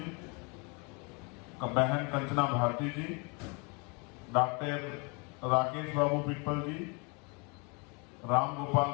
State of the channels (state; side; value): quieter; right; 31.7 dB